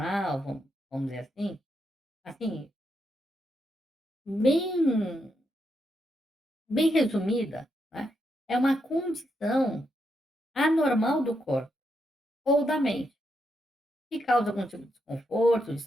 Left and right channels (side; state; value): both; normal; correlation 0.81